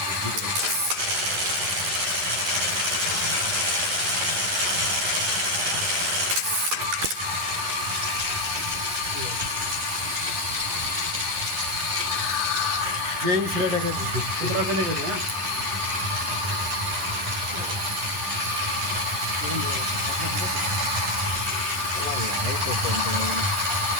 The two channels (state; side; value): late; left; 10 ms